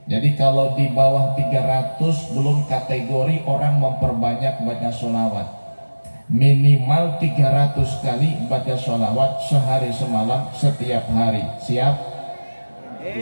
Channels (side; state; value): both; inverted; correlation -1.00